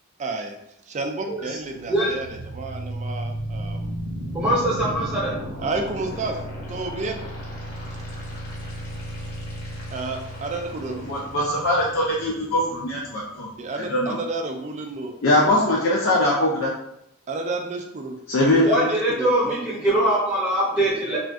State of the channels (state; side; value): normal; both; correlation 0.12